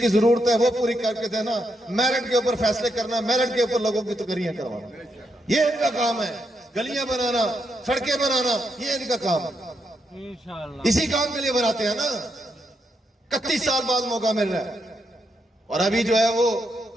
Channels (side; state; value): both; normal; correlation 0.81